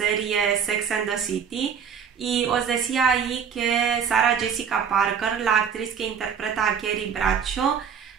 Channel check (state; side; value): quieter; left; 7.2 dB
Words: Sex and the City, y os decía ahí que Sarah Jessica Parker, la actriz que interpreta a Carrie Bradshaw,